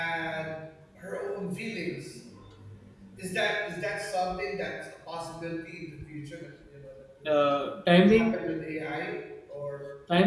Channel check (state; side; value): identical; both; correlation 1.00